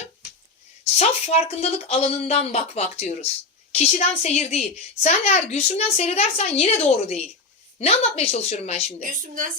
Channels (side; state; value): right; quieter; 3.6 dB